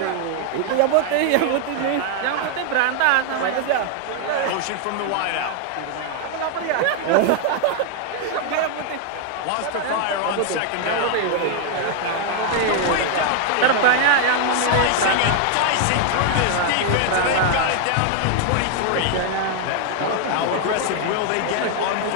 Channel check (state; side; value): different; both; correlation 0.00